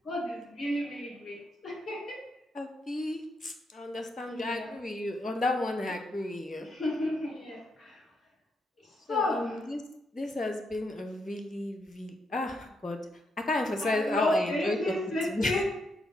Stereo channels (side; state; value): both; normal; correlation 0.79